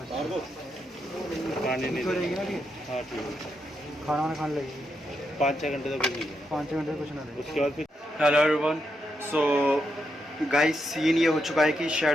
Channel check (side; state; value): both; normal; correlation 0.83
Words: पानी नहीं देगा। हाँ ठीक है, खाना वाना खाने लगेगी 5-6 घंटे तो कुछ नहीं देगा, 5 घंटे कुछ ना दे। उसके बाद फिर। Hello everyone, so guys scene ये हो चुका है कि